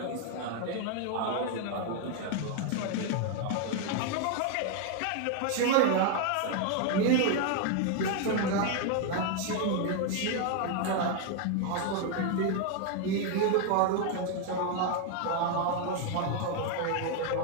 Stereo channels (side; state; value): both; different; correlation 0.01